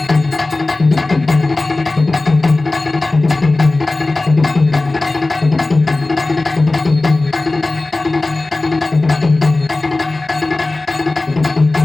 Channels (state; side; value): quieter; right; 3.1 dB